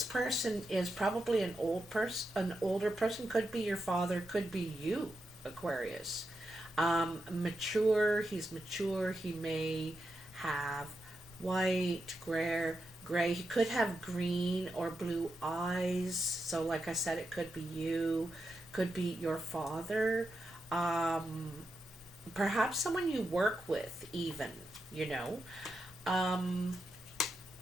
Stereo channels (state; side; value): normal; both; correlation 0.87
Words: person is probably an older person, could be your father, could be you, Aquarius. Mature, he's mature, he may have white, gray, he could have green or blue eyes. So like I said, it could be you, could be your father, perhaps someone you work with even, you know.